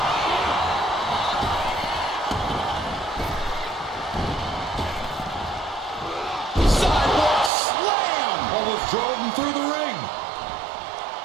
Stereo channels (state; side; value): drops out; left; at 7.5 s